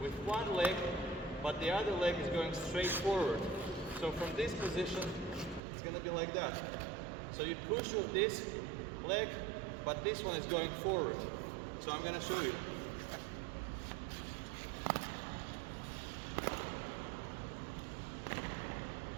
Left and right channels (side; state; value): left; drops out; at 5.6 s